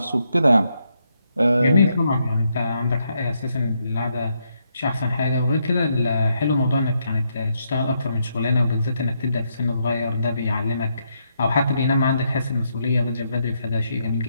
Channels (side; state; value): both; inverted; correlation -0.78